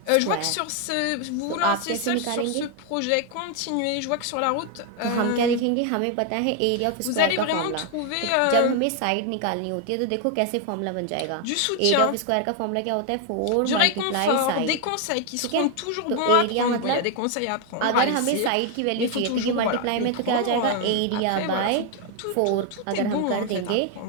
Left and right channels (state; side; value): different; both; correlation 0.01